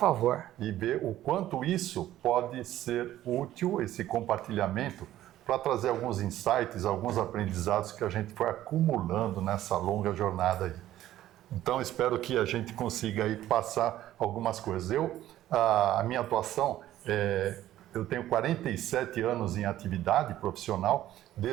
E ver o quanto isso pode ser útil, esse compartilhamento, para trazer alguns insights, alguns aprendizados que a gente foi acumulando nessa longa jornada aí. Então, espero que a gente consiga aí passar algumas coisas. A minha atuação eu tenho 47 anos em atividade profissional,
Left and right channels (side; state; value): left; quieter; 13.5 dB